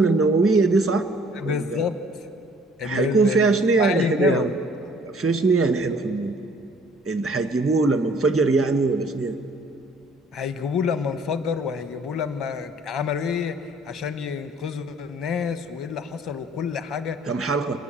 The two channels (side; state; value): both; normal; correlation 0.57